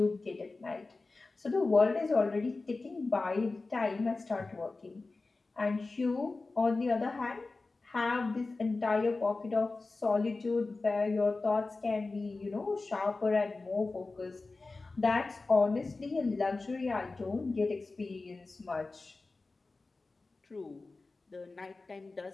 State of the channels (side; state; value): right; quieter; 3.6 dB